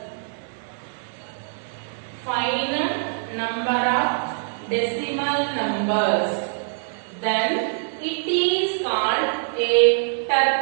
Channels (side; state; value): left; silent; 63 dB below the other